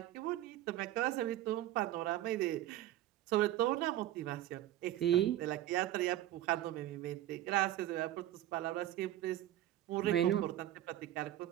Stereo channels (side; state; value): left; quieter; 13.5 dB